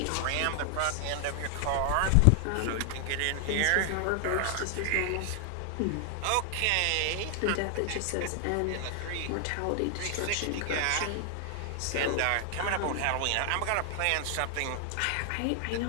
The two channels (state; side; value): different; both; correlation 0.00